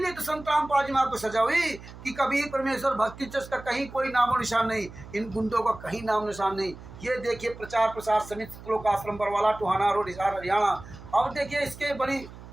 तो संत रामपाल जी महाराज को सजा हुई कि कभी परमेश्वर भक्ति ट्रस्ट का कहीं कोई नामो निशान नहीं, इन गुंडों का कहीं नाम निशान नहीं। ये देखिए, प्रचार प्रसार समिति, सतलोक आश्रम बरवाला, टोहाना रोड, हिसार, हरियाणा। अब देखिए, इसके बड़ी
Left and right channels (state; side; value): noise; right; hum, 16 dB below the sound